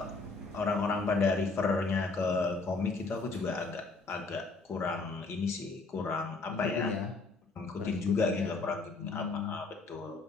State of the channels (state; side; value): quieter; right; 3.8 dB